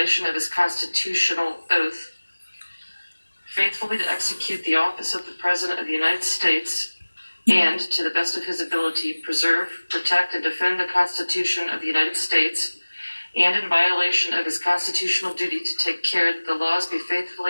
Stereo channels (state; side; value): inverted; both; correlation -1.00